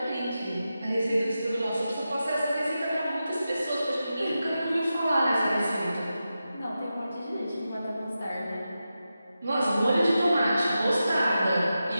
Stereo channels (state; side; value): inverted; both; correlation -0.91